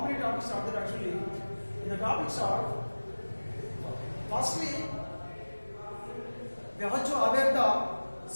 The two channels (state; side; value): inverted; both; correlation -1.00